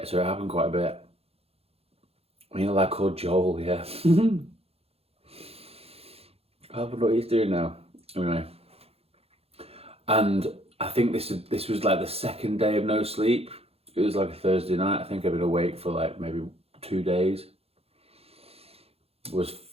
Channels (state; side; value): late; left; 0.29 ms